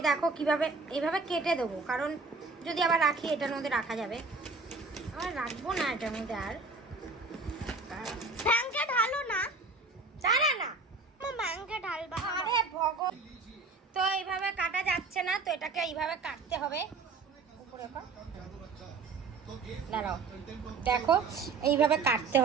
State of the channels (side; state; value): left; quieter; 4.1 dB